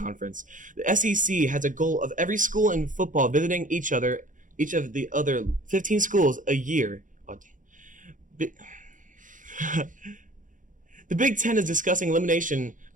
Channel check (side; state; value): left; late; 0.38 ms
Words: The SEC has a goal of every school in football visiting each of the other 15 schools a year. The Big Ten is discussing elimination